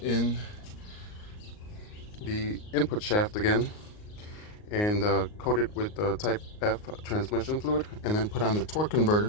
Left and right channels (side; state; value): right; late; 38 ms